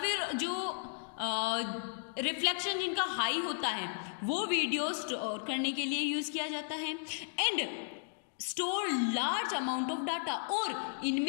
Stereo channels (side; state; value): right; silent; digital silence